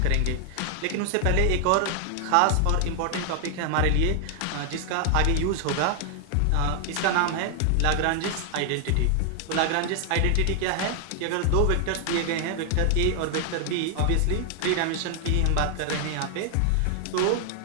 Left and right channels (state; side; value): different; both; correlation 0.00